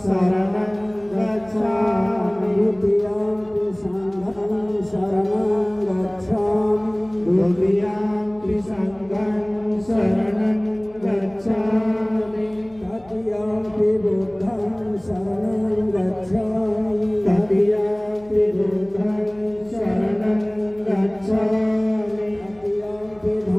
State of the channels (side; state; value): left; noise; hum, 26 dB below the sound